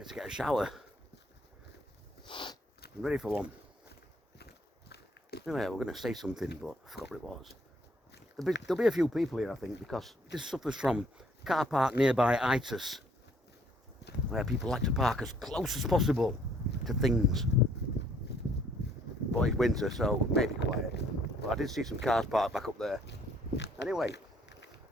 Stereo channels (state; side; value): normal; both; correlation 0.63